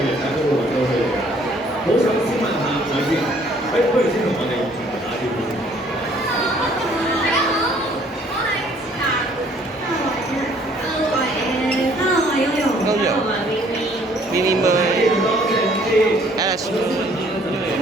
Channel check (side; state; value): both; normal; correlation 0.60